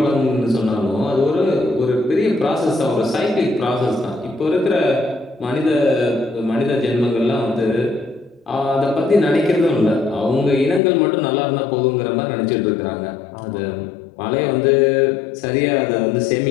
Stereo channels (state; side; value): drops out; right; at 10.8 s